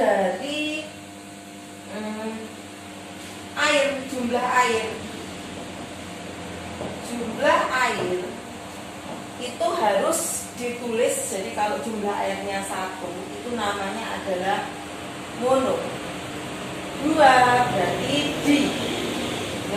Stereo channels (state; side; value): identical; both; correlation 1.00